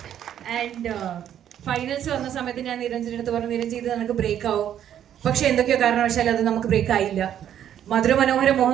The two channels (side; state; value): left; quieter; 10.2 dB